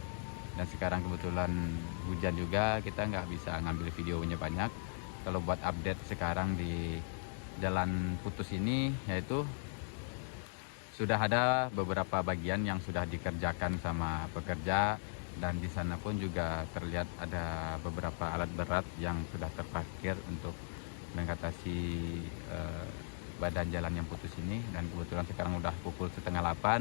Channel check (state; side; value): silent; right; digital silence